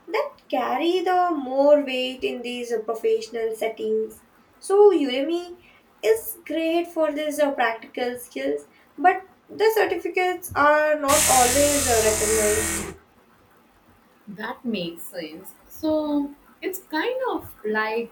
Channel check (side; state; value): both; identical; correlation 1.00